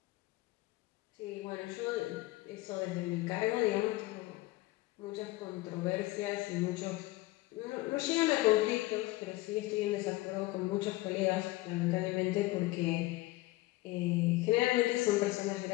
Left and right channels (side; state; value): right; quieter; 19.3 dB